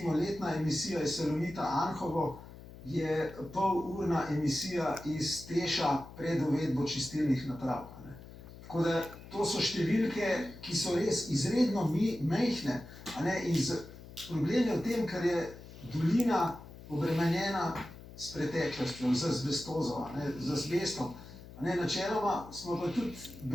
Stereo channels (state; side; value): noise; left; hum, 16 dB below the sound